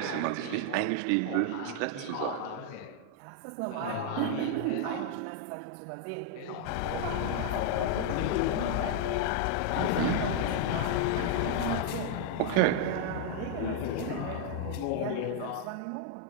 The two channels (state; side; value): different; both; correlation 0.00